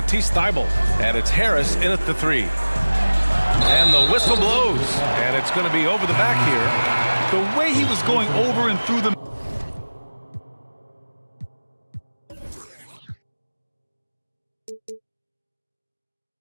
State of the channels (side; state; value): both; inverted; correlation -1.00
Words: Thybulle. And it's Harris in at the 3. And the whistle blows. And it's going to be over the back here. The way he was going over and through the